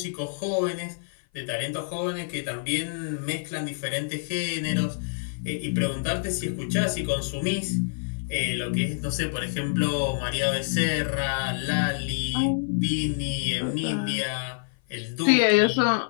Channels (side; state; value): right; silent; 56 dB below the other